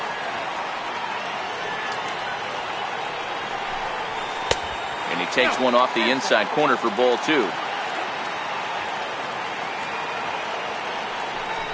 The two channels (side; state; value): both; identical; correlation 1.00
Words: And he takes one off the inside corner for ball two.